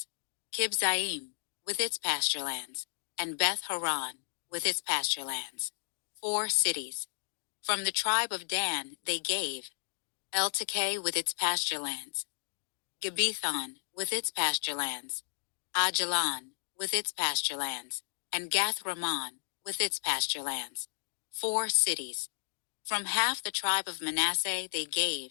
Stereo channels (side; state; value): right; silent; 56 dB below the other